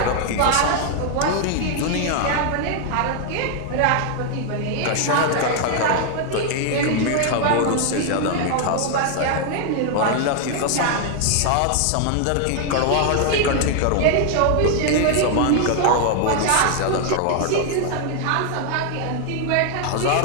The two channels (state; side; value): different; both; correlation 0.00